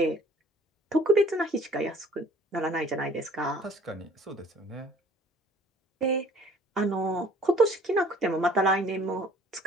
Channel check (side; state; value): both; normal; correlation 0.55